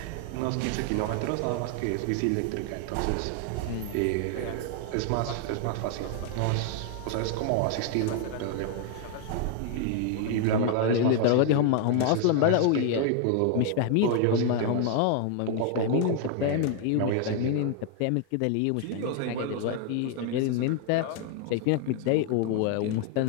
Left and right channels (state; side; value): different; both; correlation 0.00